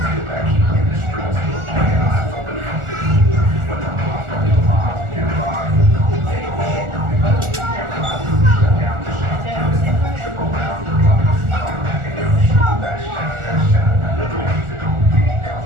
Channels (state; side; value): late; left; 1.4 ms